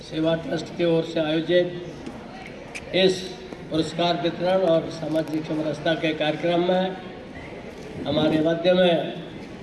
सेवा ट्रस्ट की ओर से आयोजित इस पुरस्कार वितरण और सामाजिक समरसता के कार्यक्रम में हमारे मध्य में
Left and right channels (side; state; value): both; identical; correlation 1.00